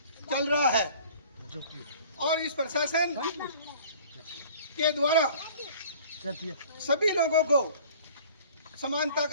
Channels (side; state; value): both; inverted; correlation -0.48